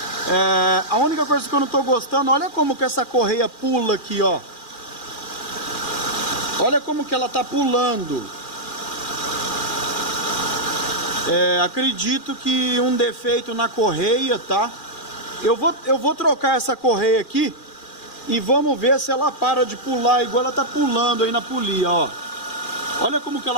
A única coisa que eu não tô gostando, olha como que essa correia pula aqui, ó. Olha como que ela tá pulando. Acredito que um defeito na correia, tá? Eu vou trocar essa correia aqui e vamos ver se ela para de pular igual ela tá pulando aí na polia, ó. Olha como que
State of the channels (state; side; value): late; right; 2.4 ms